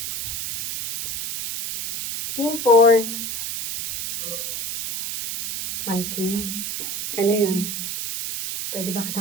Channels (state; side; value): noise; right; hiss, 4 dB below the sound